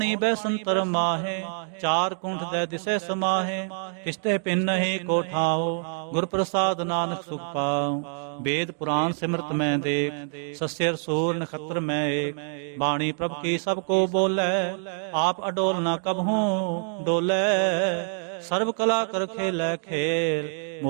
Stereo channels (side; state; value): left; silent; 58 dB below the other